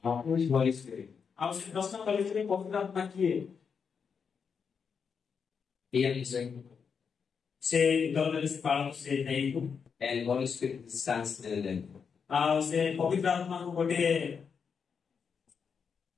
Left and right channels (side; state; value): right; quieter; 6.2 dB